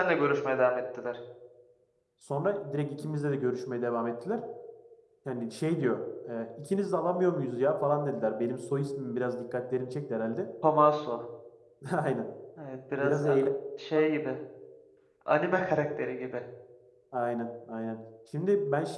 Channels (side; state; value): both; identical; correlation 1.00